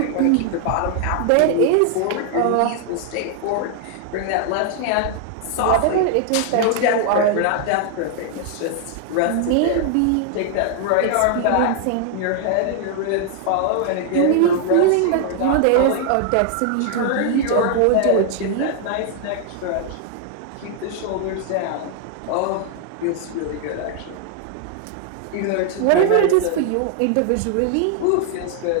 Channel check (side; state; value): both; different; correlation 0.00